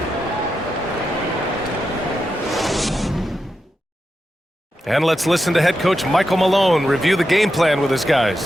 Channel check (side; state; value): both; normal; correlation 0.87